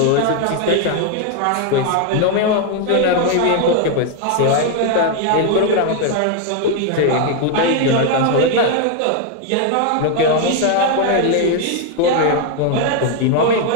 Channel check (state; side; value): different; both; correlation 0.01